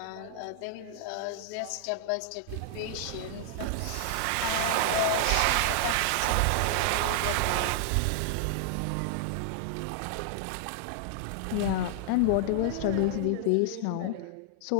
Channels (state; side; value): different; both; correlation -0.01